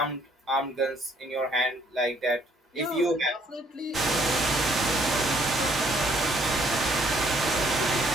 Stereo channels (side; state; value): both; normal; correlation 0.65